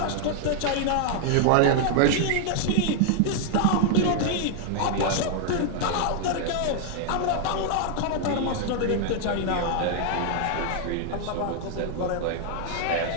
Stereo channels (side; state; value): both; different; correlation 0.00